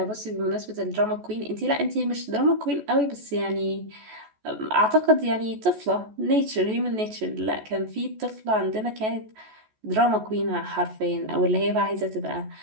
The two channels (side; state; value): left; late; 14 ms